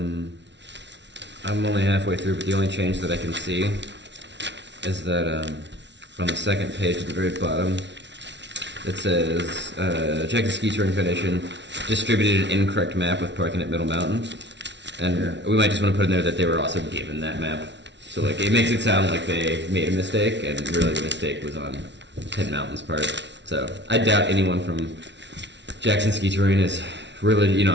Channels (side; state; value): left; late; 0.51 ms